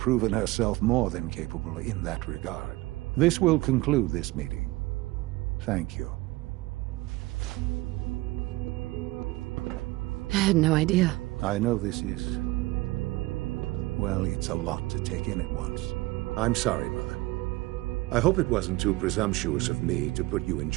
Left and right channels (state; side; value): quieter; left; 20.3 dB